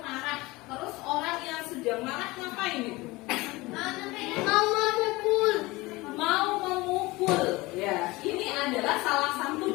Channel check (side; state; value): right; quieter; 21.6 dB